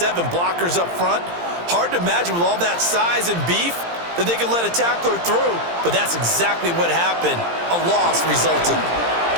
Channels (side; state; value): left; late; 17 ms